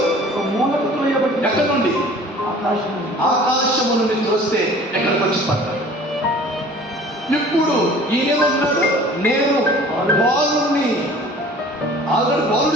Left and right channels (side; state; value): both; normal; correlation 0.47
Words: ఒక మూలకు త్రోయబడి ఎక్కడి నుండి? ఆకాశం ఆకాశము నుండి త్రోస్తే ఎక్కడికి వచ్చి పడ్డాడు. ఇప్పుడు ఈయనేమన్నాడు? నేను బాలుడిని. ఆల్రెడీ